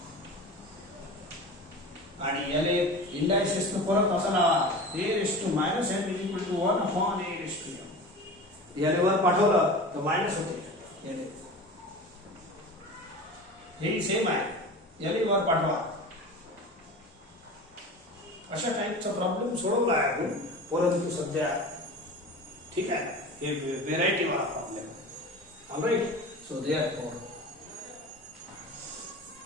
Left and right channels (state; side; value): normal; both; correlation 0.34